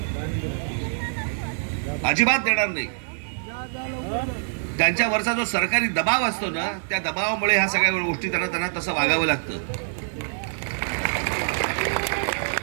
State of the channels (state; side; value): silent; left; digital silence